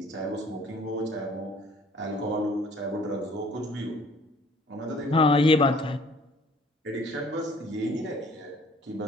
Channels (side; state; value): both; normal; correlation 0.56